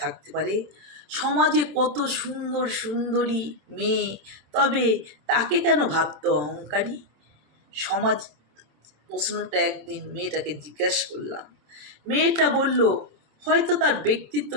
থাকতে পারে? সমাজে কত সুন্দর সুন্দরী মেয়ে, তবে তাকে কেন ভাবতো অহংকারী? সমাজ প্রশ্নটা একদিন মেয়েটাকে জিজ্ঞাসা করলাম। মেয়েটা বলল, হয়তো তার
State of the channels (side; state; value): left; late; 27 ms